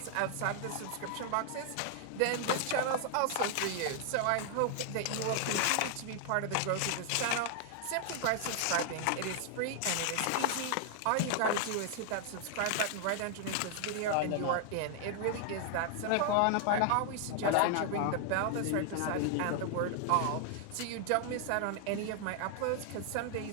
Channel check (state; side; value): different; both; correlation 0.00